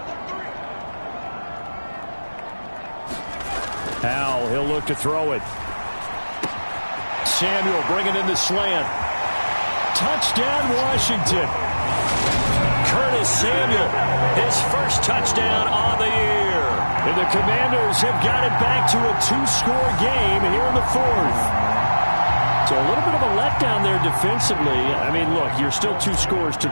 Howell, he'll look to throw it. Samuel bringing in the slant. Touchdown, Washington. Curtis Samuel, his first touchdown on the year. And the Commanders have got it back to a 2-score game here in the 4th. So a little bit of a letdown there defensively. I mean, look, you're still 2 scores to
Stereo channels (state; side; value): inverted; both; correlation -1.00